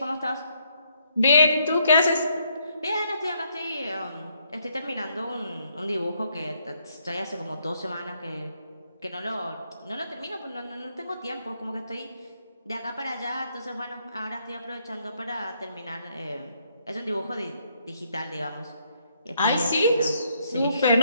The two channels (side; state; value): both; inverted; correlation -0.72